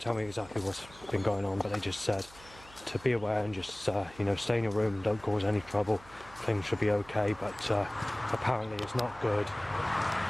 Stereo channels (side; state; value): right; noise; hum, 21 dB below the sound